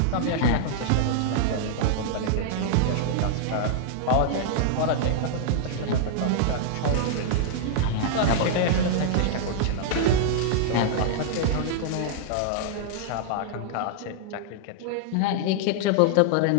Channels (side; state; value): both; different; correlation -0.01